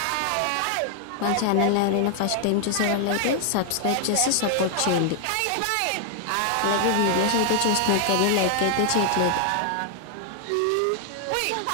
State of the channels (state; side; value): different; both; correlation 0.00